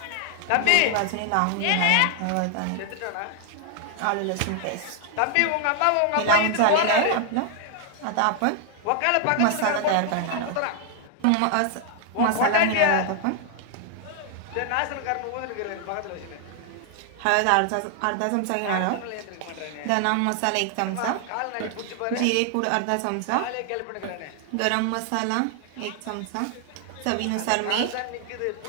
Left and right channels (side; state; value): both; different; correlation 0.00